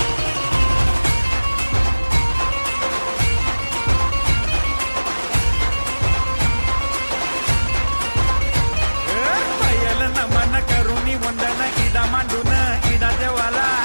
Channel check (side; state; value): both; inverted; correlation -1.00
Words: नमन करुणी वंदन इडा मांडून इडा देवाला